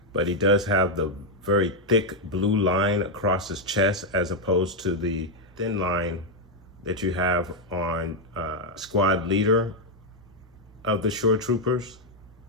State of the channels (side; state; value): both; normal; correlation 0.02